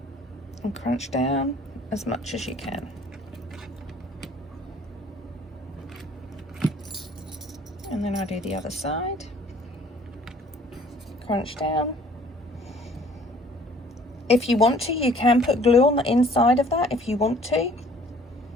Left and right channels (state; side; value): normal; both; correlation 0.55